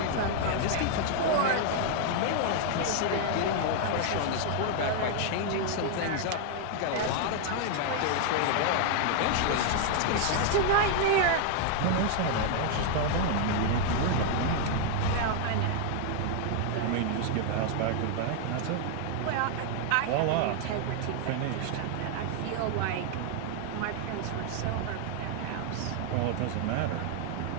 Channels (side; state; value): both; different; correlation 0.00